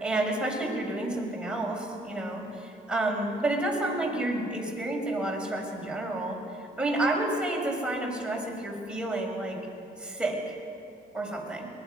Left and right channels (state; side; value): normal; both; correlation 0.63